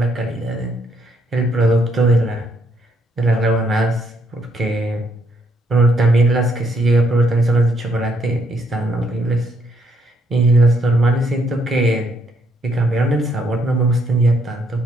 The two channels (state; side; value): normal; both; correlation 0.72